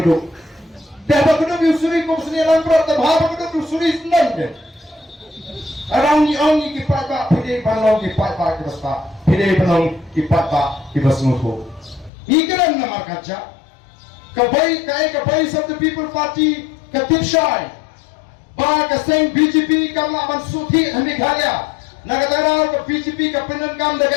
dah ba keduk yu suri kup sni langbrat ta ba keduk yu suri senang de arang ni ong ki pat ba pide panlong ki pat ba ki basta pide panlong ki pat ba ki basmuko ikaran namar kaca kabai kabai of the people party katip shai ba ka seng BJP kamla man suthi hami khalya nakataraw ka PGP ka pinangkam daga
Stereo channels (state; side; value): drops out; right; at 12.1 s